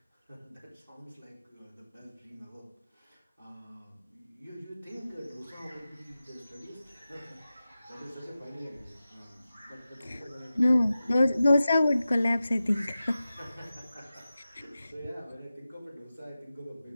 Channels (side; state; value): both; inverted; correlation -0.94